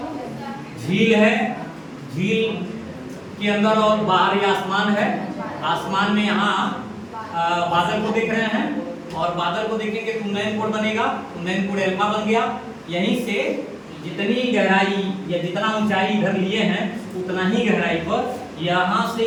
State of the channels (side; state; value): both; identical; correlation 1.00